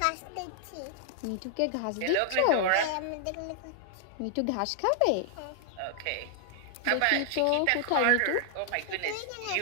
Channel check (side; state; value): both; different; correlation 0.00